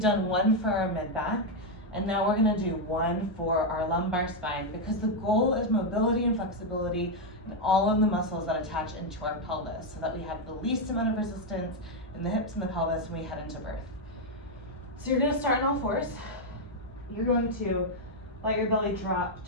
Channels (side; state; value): both; normal; correlation 0.02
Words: one for our mid-back, and now we're gonna do one for our lumbar spine, because the goal is mobility and flexibility in all of the muscles that attach into our pelvis, so that we have the least amount of resistance in the hips and the pelvis when we head into birth. So you're gonna start on all fours. You're going to let your belly drop